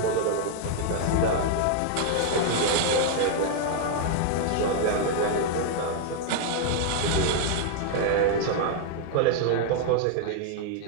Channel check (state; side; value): different; both; correlation 0.00